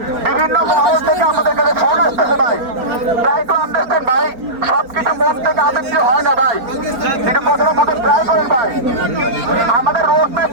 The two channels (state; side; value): late; left; 4.4 ms